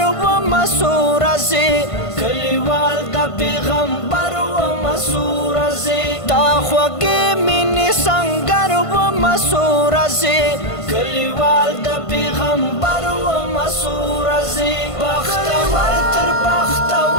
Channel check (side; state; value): right; late; 1.5 ms